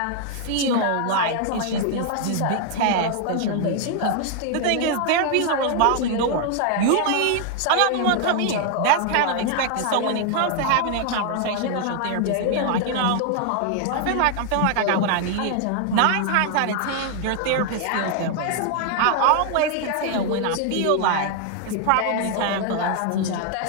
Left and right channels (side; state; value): both; different; correlation 0.00